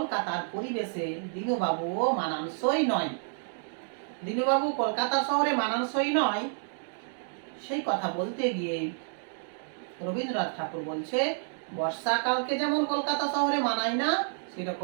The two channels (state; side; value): silent; left; digital silence